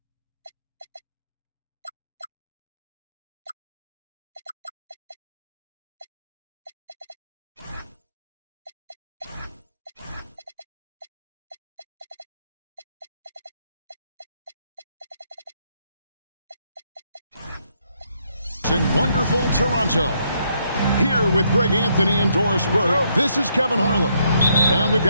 In wonderful Toronto. Here with Greg Anthony and Doris Burke, this is Kevin Harlan. And we've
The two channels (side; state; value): both; inverted; correlation -0.74